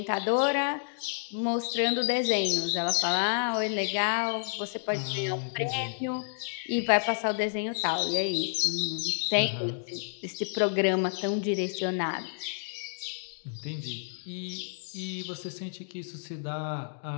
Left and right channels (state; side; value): silent; right; digital silence